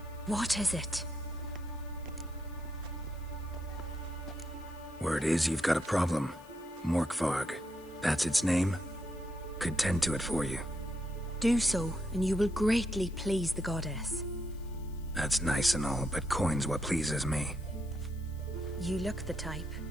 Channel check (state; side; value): noise; left; hiss, 26 dB below the sound